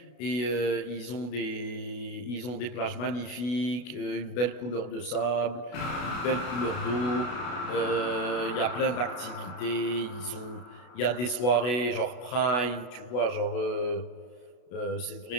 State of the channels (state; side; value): late; right; 33 ms